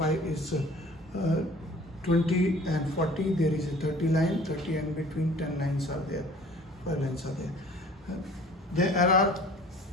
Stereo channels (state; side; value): normal; both; correlation 0.49